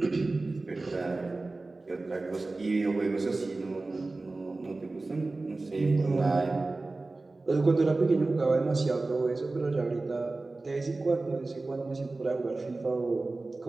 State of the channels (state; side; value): quieter; left; 3.3 dB